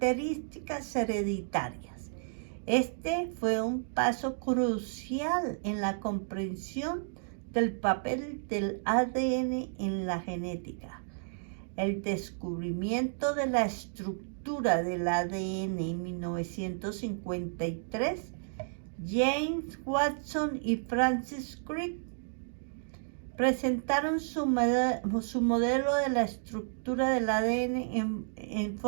hereditarias. Este fue un paso crucial en la comprensión del papel del ADN en la genética. El descubrimiento de la estructura del ADN en 1953, James Watson y Francis Crick presentaron su modelo de la estructura del ADN en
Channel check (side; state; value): left; silent; digital silence